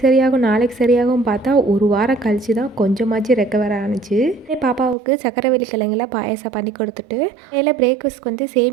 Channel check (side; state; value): left; drops out; at 5.0 s